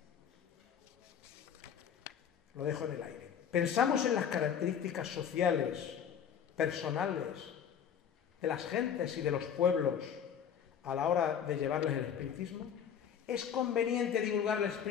Lo dejo en el aire. Pensamos en las características sociales, personales, de las gentes y de los pueblos a la hora de llevarles el espiritismo. ¿Es conveniente divulgar el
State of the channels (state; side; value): quieter; right; 8.2 dB